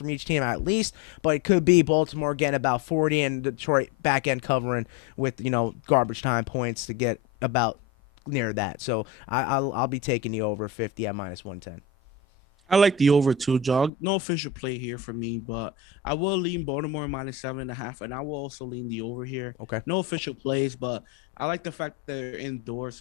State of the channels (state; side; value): drops out; right; at 13.9 s